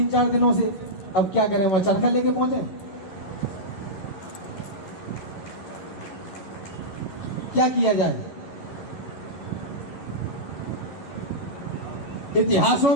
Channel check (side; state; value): right; late; 11 ms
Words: दिनों से, अब क्या करें, वो चरखा लेके पहुंचे, क्या किया जाए।